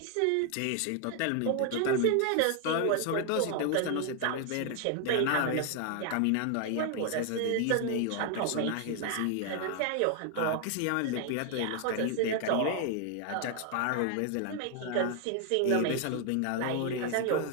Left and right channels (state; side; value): different; both; correlation 0.00